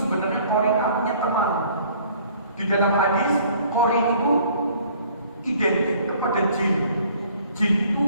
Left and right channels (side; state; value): both; inverted; correlation -0.56